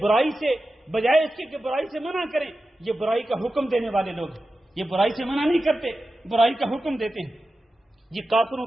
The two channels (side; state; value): both; normal; correlation 0.92